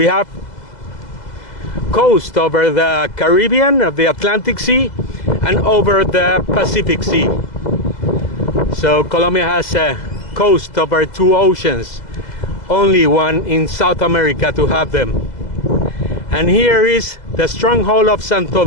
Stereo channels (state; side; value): late; right; 2.0 ms